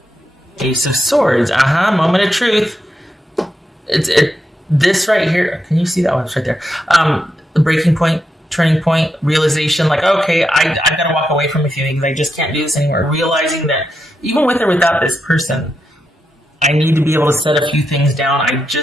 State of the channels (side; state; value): both; normal; correlation 0.84